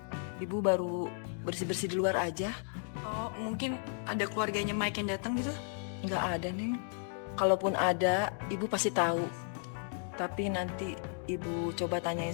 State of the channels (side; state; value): right; silent; 55 dB below the other